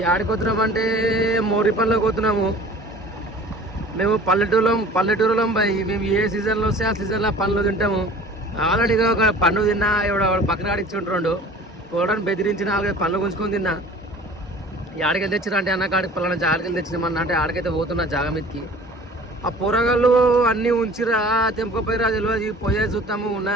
ఆడిపోతున్నామంటే మోరిపల్లికి పోతున్నాము. మేము పల్లెటూరులో మేము ఏ సీజన్లో వస్తే ఆ సీజన్లో పండ్లు తింటాము. ఆల్రెడీగా ఒక పండు తిన్నా, ఎవడ పక్కన ఆడిచ్చుంటుండు పోవడానికి బెదిరించి 4-5 పండ్లు గుంజుకొని తిన్నా. ఈ ఆడికెళ్ళి తెచ్చినా అంటే అన్న కాడికి పలానా జాగకెళ్ళి తెచ్చినామన్నా అంటే ఆడికైతే పోతున్నా జాగ మీదకి. ఆ పొరగాళ్ళు అన్నీ ఉంచిరా తెంపుకపోయిరా తెలియదు. పోయే చూస్తాము ఉన్నా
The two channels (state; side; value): normal; both; correlation 0.45